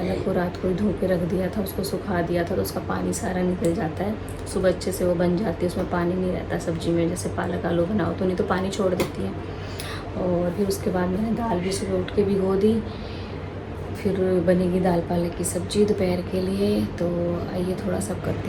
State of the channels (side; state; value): both; identical; correlation 1.00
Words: को रात को ही धो के रख दिया था, उसको सुखा दिया था, तो उसका पानी सारा निकल जाता है। सुबह अच्छे से वो बन जाती है, उसमें पानी नहीं रहता सब्ज़ी में। जैसे पालक आलू बनाओ तो नहीं तो पानी छोड़ देती है। और फिर उसके बाद मैंने दाल भी सुबह उठ के भिगो दी। फिर बनेगी दाल पालक की सब्ज़ी दोपहर के लिए। तो आइए थोड़ा सा करते